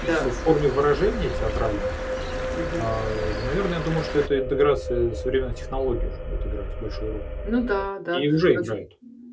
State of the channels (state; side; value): identical; both; correlation 1.00